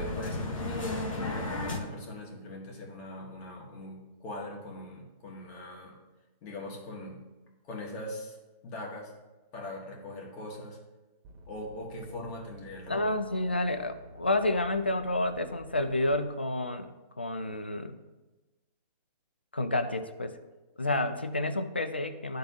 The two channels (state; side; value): inverted; both; correlation -0.60